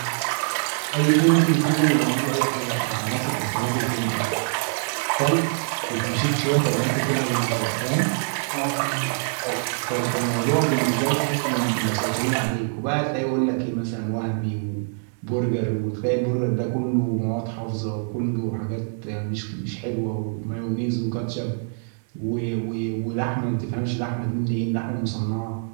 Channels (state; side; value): silent; left; digital silence